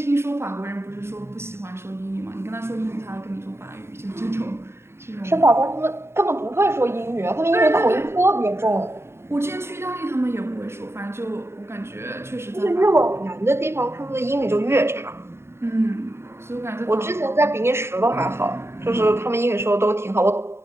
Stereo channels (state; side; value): late; left; 0.12 ms